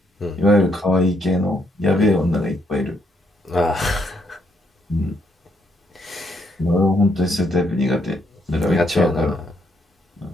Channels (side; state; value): both; normal; correlation 0.74